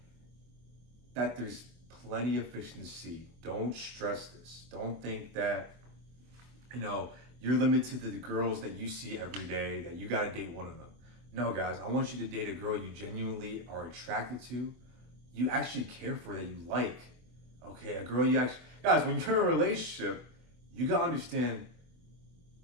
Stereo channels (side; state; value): left; late; 24 ms